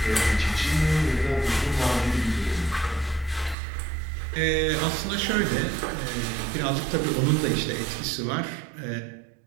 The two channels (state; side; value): drops out; left; at 3.6 s